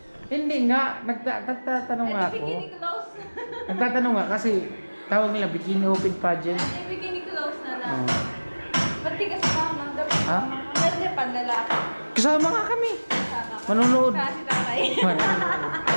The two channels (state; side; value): inverted; both; correlation -1.00